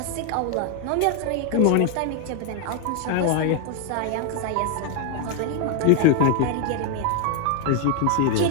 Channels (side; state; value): both; different; correlation 0.01